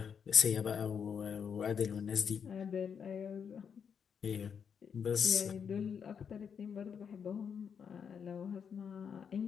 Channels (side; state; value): right; quieter; 7.1 dB